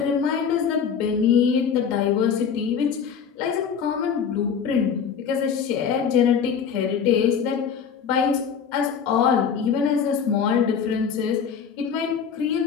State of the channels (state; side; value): quieter; right; 7.0 dB